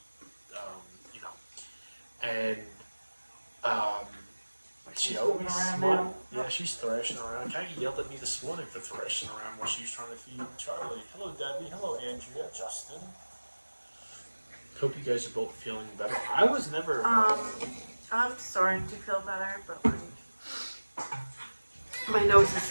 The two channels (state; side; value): inverted; both; correlation -1.00